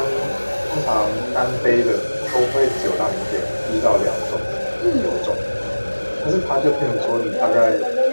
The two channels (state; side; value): inverted; both; correlation -1.00